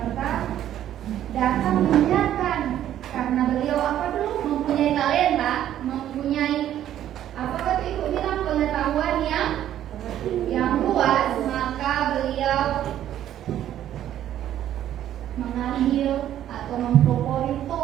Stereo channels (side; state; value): left; quieter; 11.5 dB